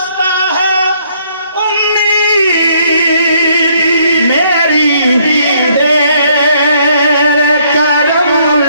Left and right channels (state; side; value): inverted; both; correlation -0.67